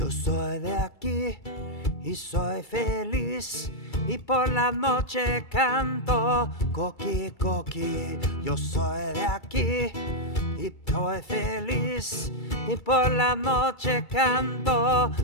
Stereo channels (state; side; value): late; right; 2.3 ms